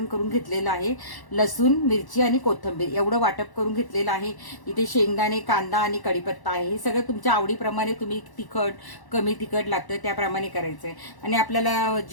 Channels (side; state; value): right; late; 1.0 ms